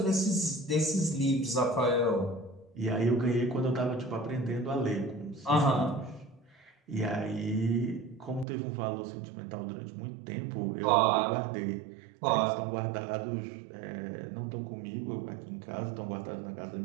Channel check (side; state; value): left; drops out; at 8.5 s